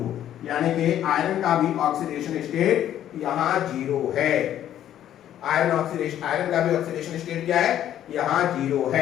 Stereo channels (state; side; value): quieter; right; 11.3 dB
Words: यानी कि आयरन का भी ऑक्सीडेशन स्टेट यहां 0 है। आयरन ऑक्सीडेशन, आयरन का भी ऑक्सीडेशन स्टेट क्या है, यहां 0